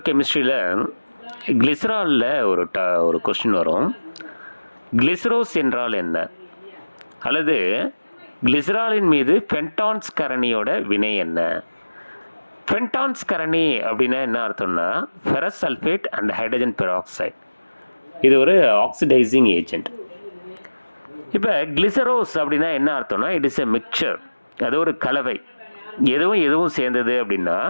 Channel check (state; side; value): inverted; both; correlation -1.00